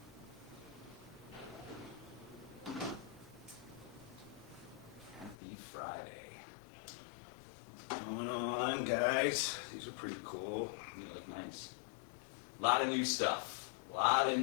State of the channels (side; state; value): right; drops out; at 5.4 s